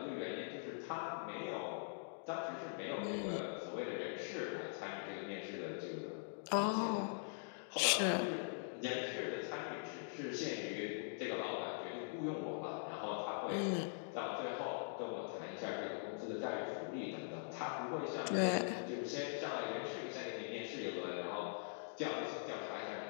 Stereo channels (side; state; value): right; silent; digital silence